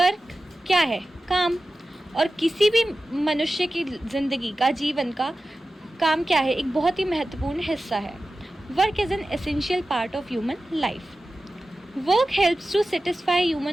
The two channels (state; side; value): normal; both; correlation 0.94